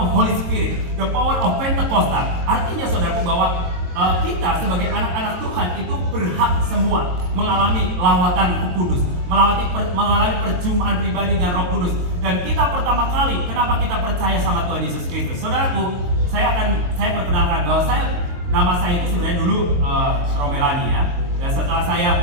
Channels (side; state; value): left; late; 23 ms